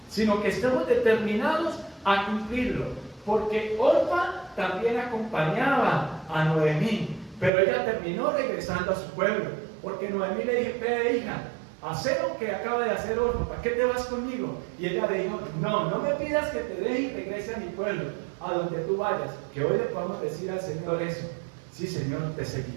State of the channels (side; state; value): left; drops out; at 7.5 s